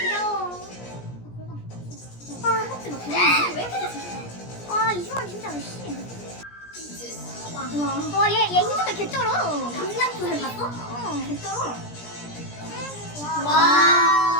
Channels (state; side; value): late; right; 17 ms